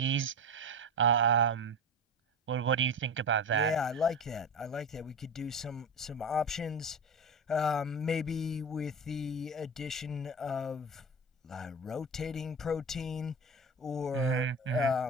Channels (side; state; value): both; normal; correlation 0.24